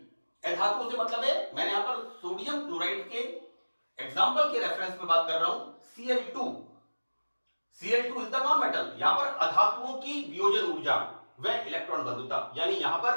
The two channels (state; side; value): inverted; both; correlation -1.00